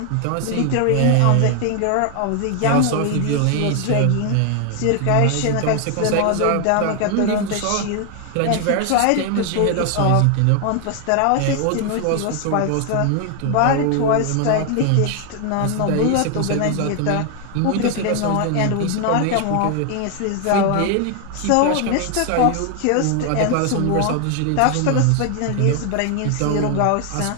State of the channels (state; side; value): different; both; correlation 0.00